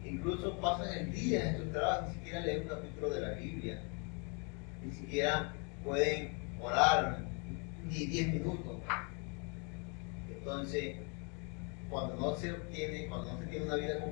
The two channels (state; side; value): quieter; right; 35.1 dB